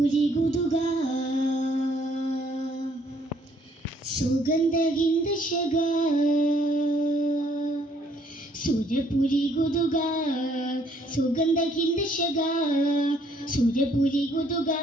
ഗുദുക സുഗന്ധഹിന്ദ ശഗ, സൂര്യപുരി ഗുദുക സുഗന്ധഹിന്ദ ശഗ, സൂര്യപുരി ഗുദുക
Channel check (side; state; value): both; normal; correlation 0.65